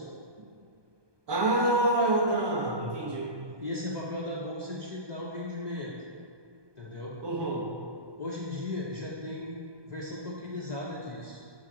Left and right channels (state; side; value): late; left; 1.2 ms